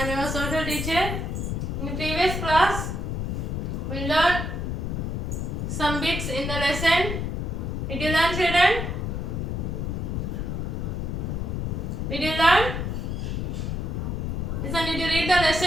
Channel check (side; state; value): left; noise; rumble, 2 dB below the sound